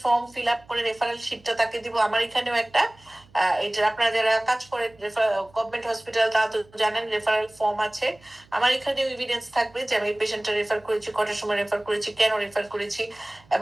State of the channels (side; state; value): right; noise; hum, 28 dB below the sound